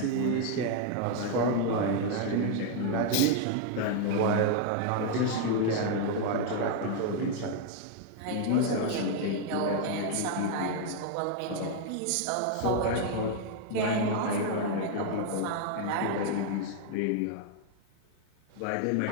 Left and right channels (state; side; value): different; both; correlation 0.00